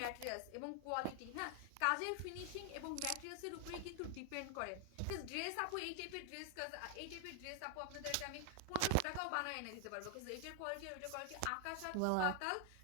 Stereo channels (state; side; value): different; both; correlation 0.00